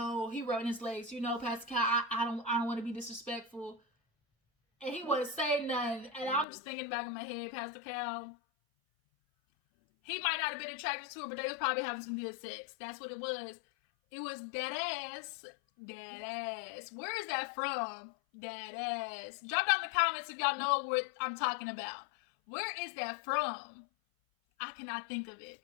rubbing his legs. Pastor Cal, I don't want to be disrespectful. And he wasn't saying nothing. And I'm just thinking back in my head, Pastor Cal, he might not have been attracted to her, but they was probably having some good sex. That's what it was. It was dead ass. Dead ass. Where is that from? Dead ass. Drop down in the comments if y'all know what I'm talking about. Where is that from? I cannot think of it.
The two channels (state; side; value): drops out; right; at 6.5 s